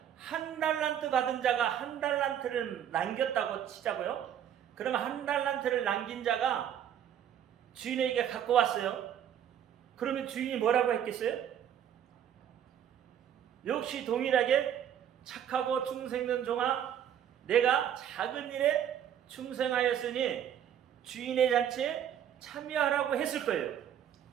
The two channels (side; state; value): left; quieter; 9.8 dB